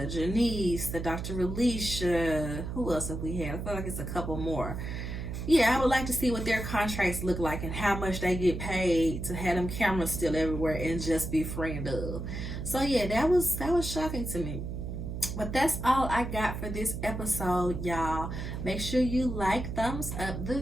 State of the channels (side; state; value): right; noise; hum, 5 dB below the sound